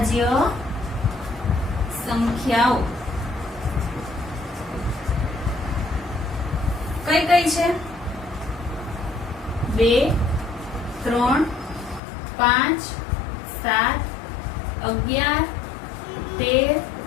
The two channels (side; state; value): right; drops out; at 12.0 s